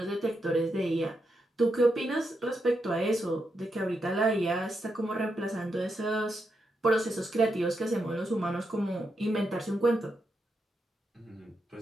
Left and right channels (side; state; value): both; normal; correlation 0.84